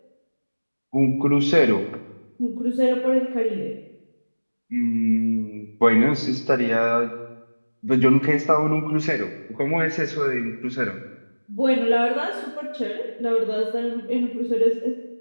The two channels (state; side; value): inverted; both; correlation -1.00